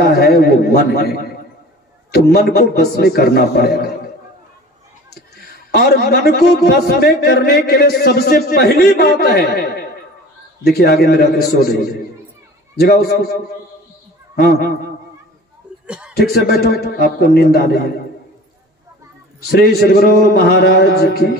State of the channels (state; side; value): normal; both; correlation 0.42